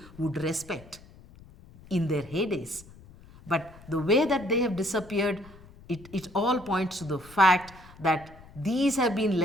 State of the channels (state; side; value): noise; left; rumble, 22 dB below the sound